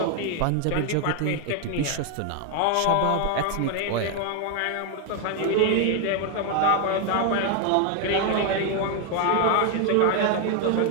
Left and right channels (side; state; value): both; different; correlation 0.01